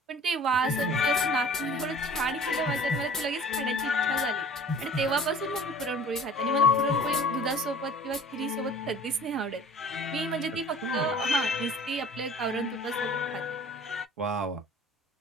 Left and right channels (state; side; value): normal; both; correlation 0.47